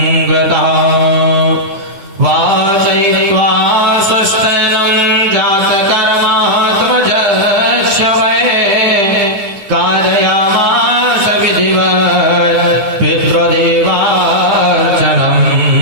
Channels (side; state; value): left; late; 10 ms